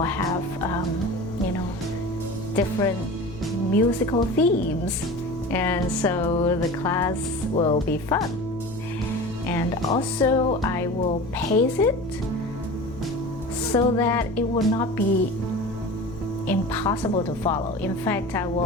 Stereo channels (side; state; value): left; noise; hum, 15 dB below the sound